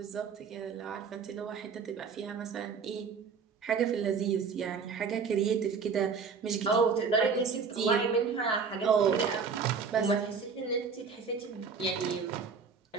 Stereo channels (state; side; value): quieter; left; 5.6 dB